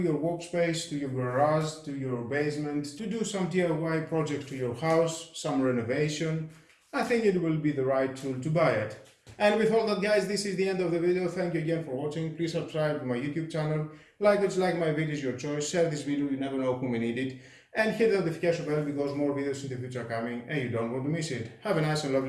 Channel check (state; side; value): identical; both; correlation 1.00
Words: workspace, to your garage, to your basement, to do some DIY project to your house, some renovation, I think it will be the right tool to buy it. And with all that guys, this is the end of the video. Thank you again for watching. Please subscribe to my YouTube channel. Like it, like my videos, your choice. Share this video, you never know who may need it. And hit the notification bell because more videos in the future are coming and you don't want to miss it. Have a nice and